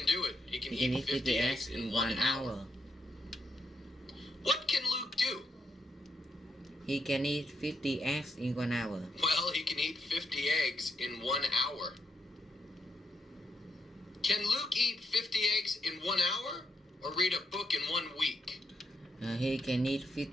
do it. He can He can eat eat 50 eggs in 1 hour. What can Luke do? He can eat 50 eggs in 1 hour. Well, he can eat 50 eggs in 1 hour. Can Luke eat 50 eggs in 1 hour or read a book in 1 week? He can eat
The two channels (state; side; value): normal; both; correlation 0.80